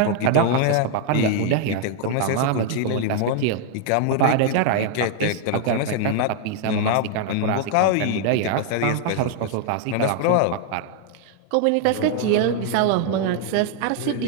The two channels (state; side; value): different; both; correlation 0.00